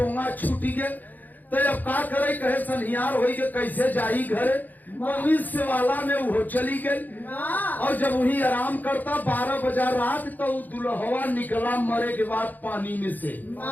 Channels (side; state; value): right; late; 0.084 ms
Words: छूटी गए तो अब का करे कहे सनिहार हो गए कैसे जाई घरे से वाला में वो चली गई। और जब वही आराम करता 12 बजा रात तो दुल्हवा निकला मरे के बाद पानी में से।